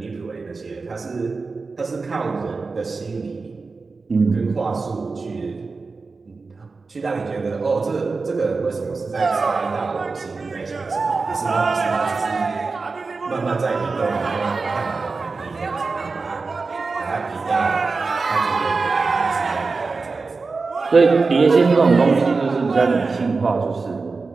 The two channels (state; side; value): quieter; left; 4.2 dB